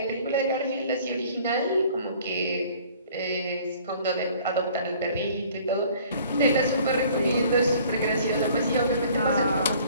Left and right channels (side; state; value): both; inverted; correlation -0.53